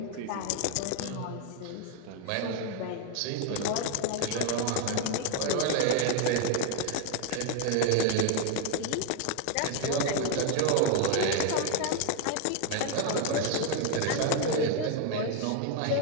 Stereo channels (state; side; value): different; both; correlation 0.01